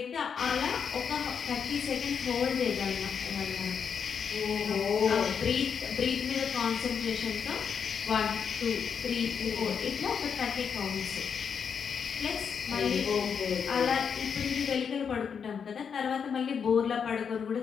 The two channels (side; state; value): right; quieter; 6.8 dB